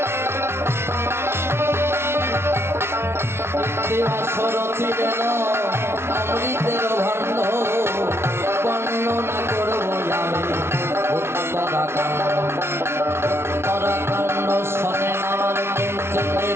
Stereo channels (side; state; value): left; late; 0.12 ms